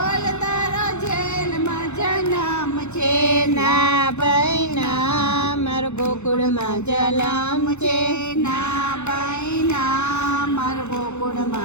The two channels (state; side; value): late; right; 0.82 ms